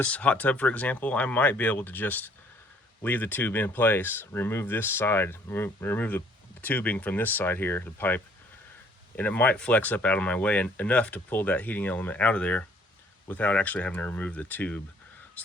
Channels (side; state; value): both; normal; correlation 0.61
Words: hot tub, for example, I might be able to just leave the tube in place, remove this side, remove the tubing from this side here, the pipe, and it might flex up out of my way enough to pull that heating element out of there without actually having to remove the tube.